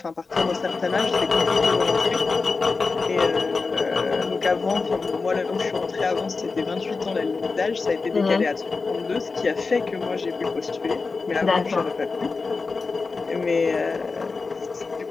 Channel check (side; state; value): right; quieter; 4.2 dB